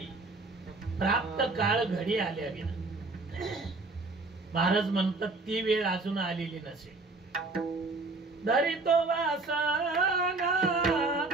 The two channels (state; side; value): quieter; left; 3.5 dB